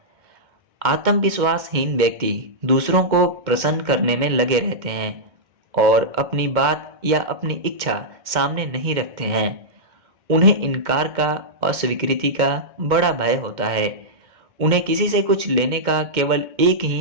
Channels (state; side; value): late; left; 2.1 ms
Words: आत्मविश्वासहीन व्यक्ति दूसरों को प्रसन्न करने में लगे रहते हैं और अपनी बात या अपनी इच्छा सामने नहीं रखते हैं। उन्हें इनकार का, अस्वीकृति का बड़ा भय होता है। उन्हें किसी से कुछ लेने का केवल एक